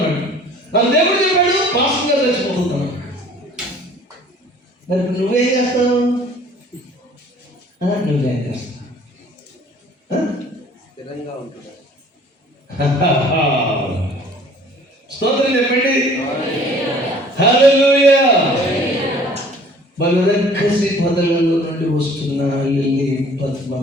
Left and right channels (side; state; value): both; normal; correlation 0.52